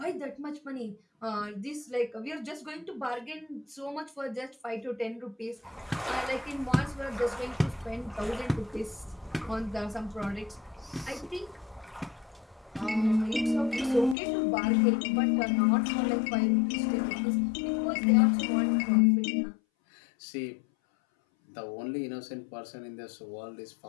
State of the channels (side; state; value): right; drops out; at 14.2 s